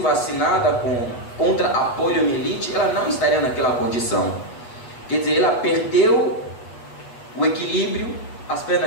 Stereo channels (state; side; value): late; right; 8.3 ms